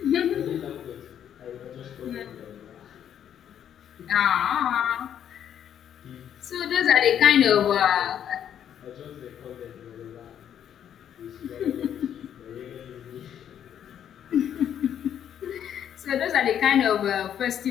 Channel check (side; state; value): right; quieter; 9.5 dB